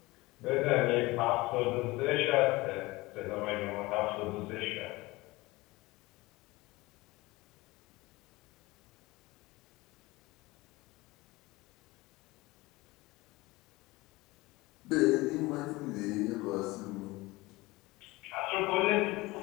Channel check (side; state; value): right; quieter; 21.2 dB